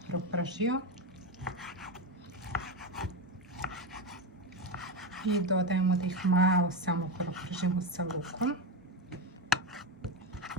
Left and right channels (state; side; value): normal; both; correlation 0.14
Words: propržio. I dodajemo da ih malo samo propržimo sa lukom.